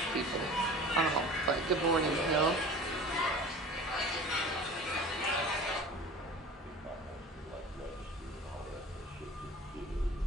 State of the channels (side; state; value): both; normal; correlation 0.40